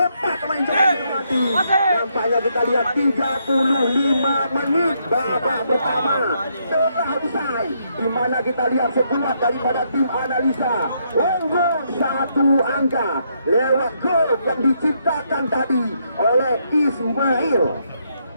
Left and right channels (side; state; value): both; inverted; correlation -0.75